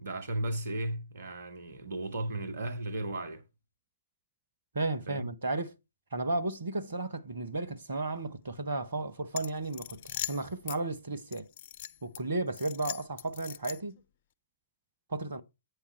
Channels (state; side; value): inverted; both; correlation -0.73